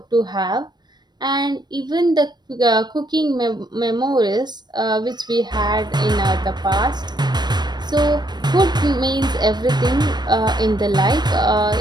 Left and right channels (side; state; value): left; late; 0.21 ms